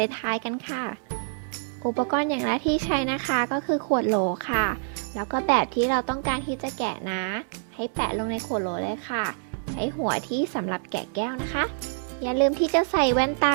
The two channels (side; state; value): left; silent; digital silence